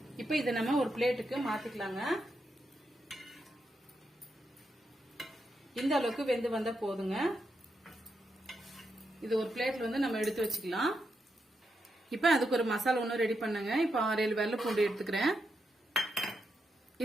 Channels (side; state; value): both; normal; correlation 0.83